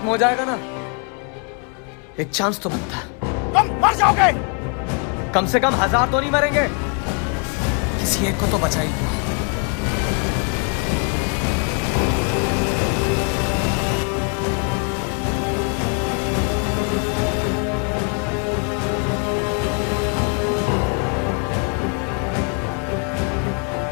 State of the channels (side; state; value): right; quieter; 37.7 dB